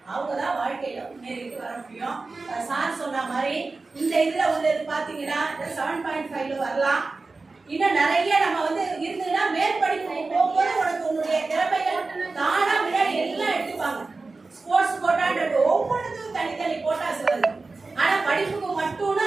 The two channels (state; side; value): quieter; left; 3.7 dB